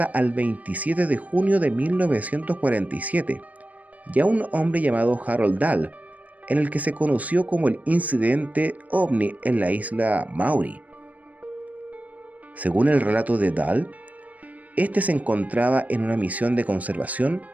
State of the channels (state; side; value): late; left; 0.072 ms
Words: al 27 de junio de 1947 y a un hombre llamado Harold Dahl, en el que se conoció como el incidente ovni en la isla Maury. Según el relato de Dahl, este se encontraba en una misión de conservación,